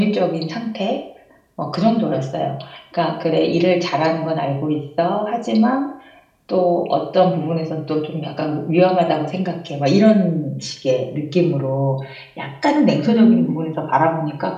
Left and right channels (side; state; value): both; identical; correlation 1.00